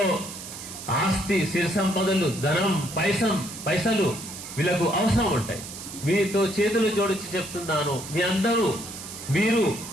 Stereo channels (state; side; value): noise; right; hiss, 11 dB below the sound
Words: ఆస్తి, సిరి సంపదలు, ధనం, పైసలు వీళ్ళకు అవసరం ఉంటాయి. మీతో చేతులు జోడించి చెప్తున్నాను, మీరు